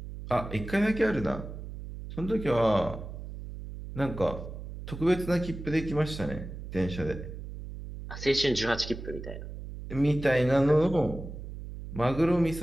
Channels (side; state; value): right; noise; hum, 10 dB below the sound